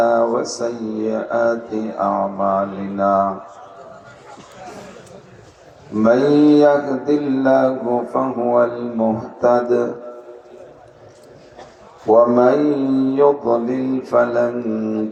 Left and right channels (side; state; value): both; identical; correlation 1.00